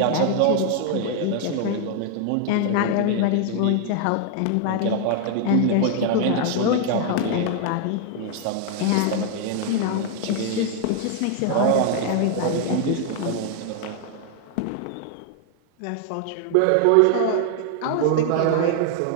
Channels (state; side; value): different; both; correlation 0.00